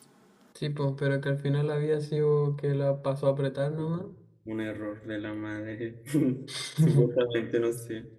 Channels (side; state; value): both; identical; correlation 1.00